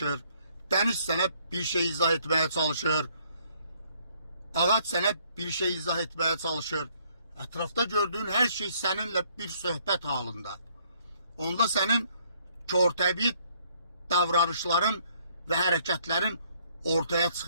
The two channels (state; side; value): inverted; both; correlation -0.66